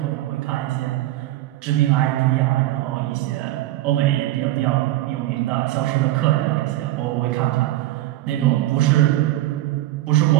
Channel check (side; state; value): left; quieter; 15.6 dB